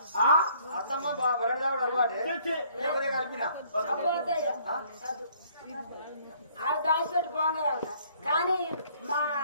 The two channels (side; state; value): both; inverted; correlation -0.62